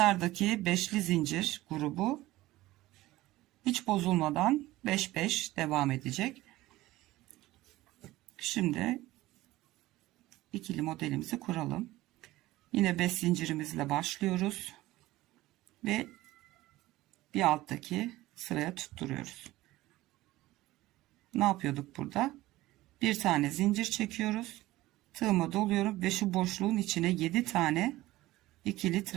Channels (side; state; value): left; quieter; 17.4 dB